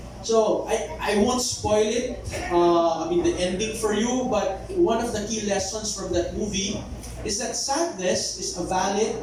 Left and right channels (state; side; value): identical; both; correlation 1.00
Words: So, I won't spoil it, the ending for you, but one of the key lessons from that movie is that sadness is a valid